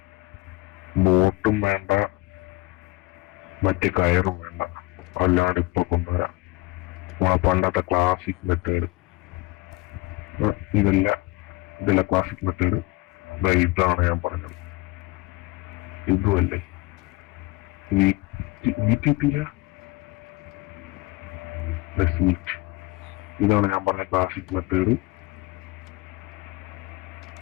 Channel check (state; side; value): quieter; right; 20.5 dB